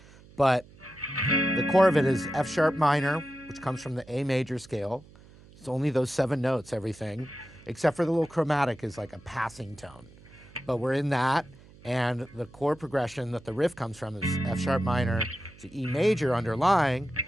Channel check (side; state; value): right; noise; hum, 23 dB below the sound